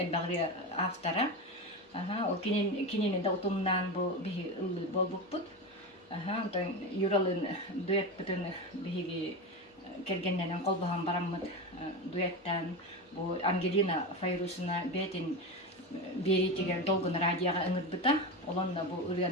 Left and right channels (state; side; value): normal; both; correlation 0.20